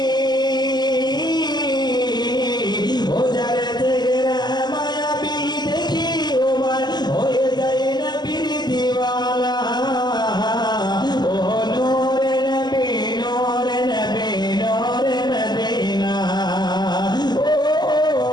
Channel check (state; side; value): late; right; 0.21 ms